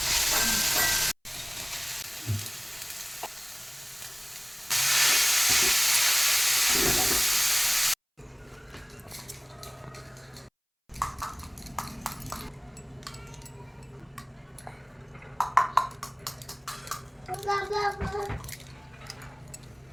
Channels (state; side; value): identical; both; correlation 1.00